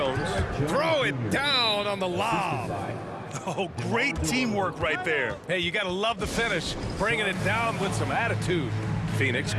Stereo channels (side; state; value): both; identical; correlation 1.00